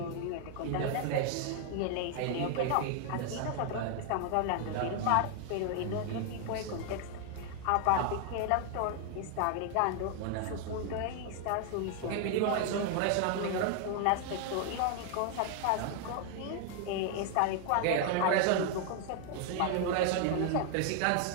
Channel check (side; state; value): both; different; correlation 0.00